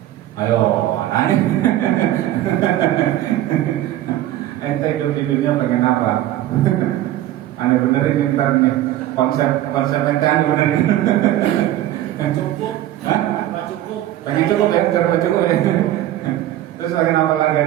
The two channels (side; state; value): left; quieter; 13.6 dB